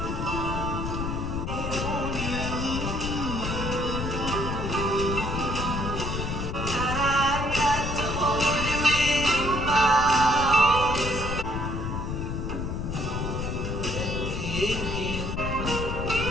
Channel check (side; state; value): left; noise; rumble, 3 dB below the sound